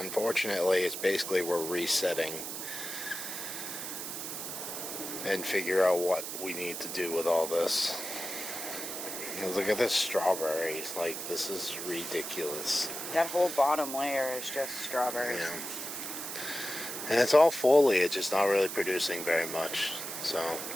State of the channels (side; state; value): right; noise; hiss, 6 dB below the sound